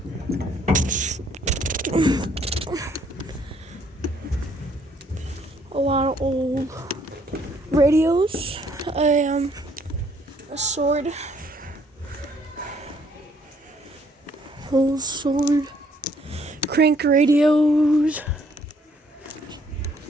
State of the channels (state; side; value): normal; both; correlation 0.65